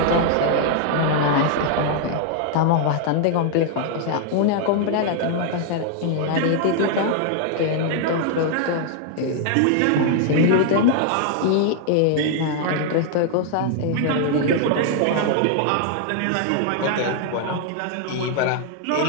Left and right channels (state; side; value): different; both; correlation 0.00